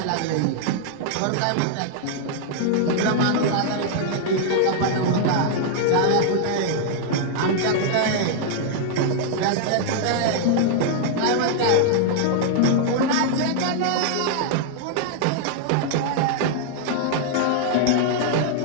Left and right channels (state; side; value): different; both; correlation 0.00